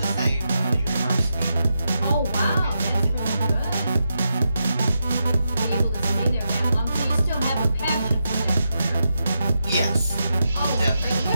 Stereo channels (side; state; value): both; inverted; correlation -0.86